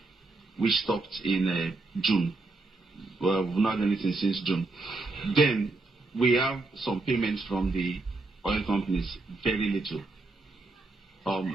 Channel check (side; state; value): left; quieter; 3.3 dB